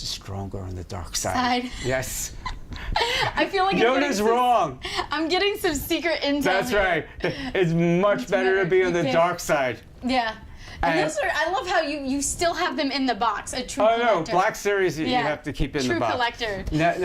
is stronger on the dark side. Side. Yes. I feel like Yoda's wrong. I'm getting some secret intel. That's here. right. It's much better to be on the Okay. dark side. Yeah. And And- those are, I love how you still have them in the box. A true Oh no, collector. Black Series you Yeah. have to keep in True the box. collector.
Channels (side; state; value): both; identical; correlation 1.00